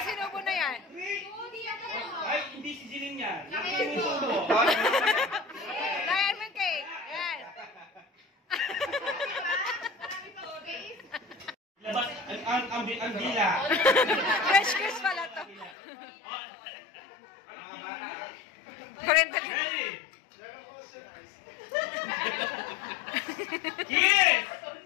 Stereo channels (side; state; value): right; drops out; at 15.8 s